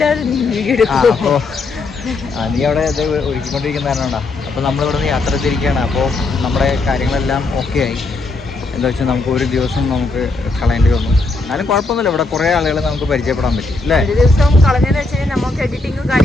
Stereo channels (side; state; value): right; quieter; 3.4 dB